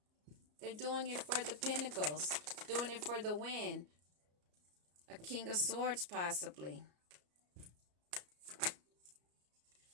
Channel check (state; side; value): late; left; 34 ms